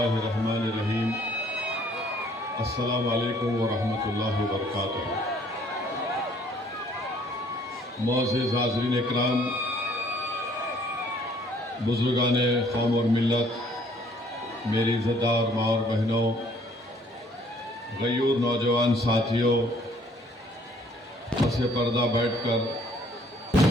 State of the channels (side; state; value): both; normal; correlation 0.60